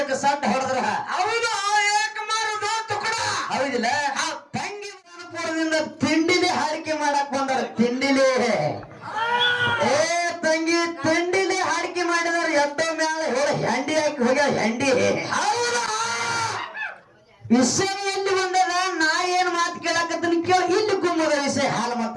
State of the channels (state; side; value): identical; both; correlation 1.00